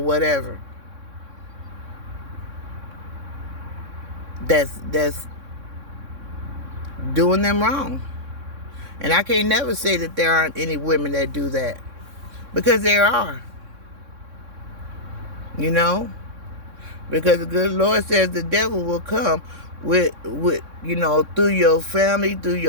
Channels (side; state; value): left; late; 3.6 ms